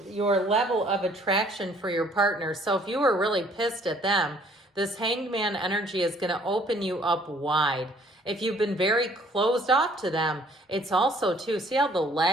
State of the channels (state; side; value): normal; both; correlation 0.59